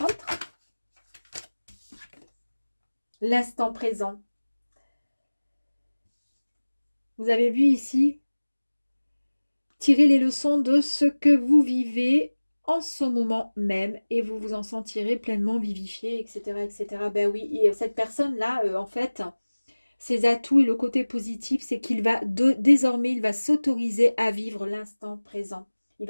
autre. L'instant présent. Vous avez vu ici, tirez les leçons de ce que vous vivez en ce moment même et vous vous en sentirez pleinement vivifié, etc. etc. Ben oui, et cette personne-là, en fait, ses atouts et le côté positif, c'est qu'il va désormais, il va s'autoriser à vivre l'instant présent. Il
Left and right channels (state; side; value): inverted; both; correlation -1.00